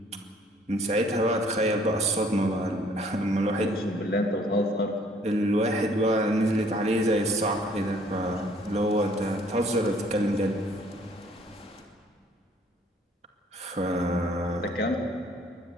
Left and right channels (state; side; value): normal; both; correlation 0.60